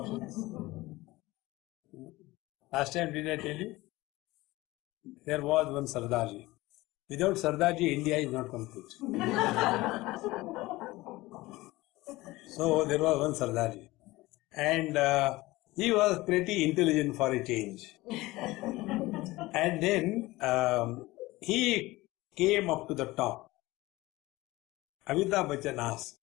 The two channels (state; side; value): quieter; right; 19.6 dB